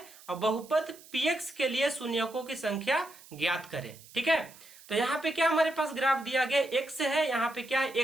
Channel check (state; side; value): noise; right; hiss, 21 dB below the sound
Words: और बहुपद px के लिए शून्यकों की संख्या ज्ञात करें। ठीक है। तो यहाँ पे क्या हमारे पास ग्राफ दिया गया, x है, यहाँ पे क्या है